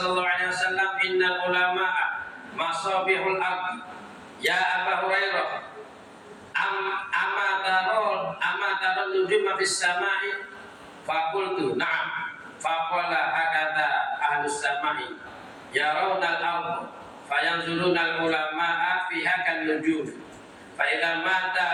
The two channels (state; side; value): identical; both; correlation 1.00